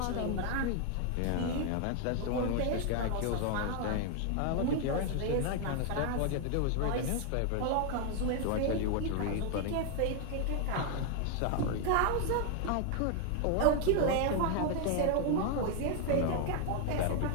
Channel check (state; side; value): different; both; correlation 0.00